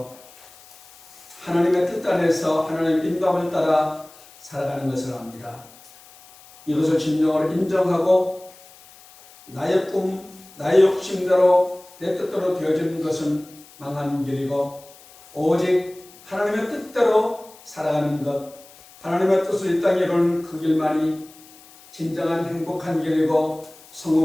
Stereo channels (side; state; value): left; noise; hiss, 23 dB below the sound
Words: 하나님의 뜻 안에서 하나님의 인도함을 따라 살아가는 것을 압니다. 이것을 진정으로 인정하고 나의 꿈, 나의 욕심대로 내 뜻대로 되어지는 것은 망하는 길이고 오직 하나님의 뜻대로 살아가는 것, 하나님의 뜻을 이 땅에 이루는 그 길만이 진정한 행복한 길이고